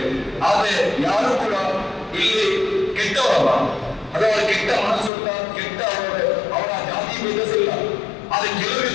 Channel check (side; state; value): right; drops out; at 5.1 s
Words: ಆದ್ರೆ ಯಾರು ಕೂಡ ಇಲ್ಲಿ ಕೆಟ್ಟವರಲ್ಲ, ಅದು ಅವರ ಕೆಟ್ಟ ಮನಸ್ಸುಂಟ, ಕೆಟ್ಟ ಅವರ ಜಾತಿ ಭೇದಿಸಿಲ್ಲ. ಆದ್ರೆ ಕೆಲವು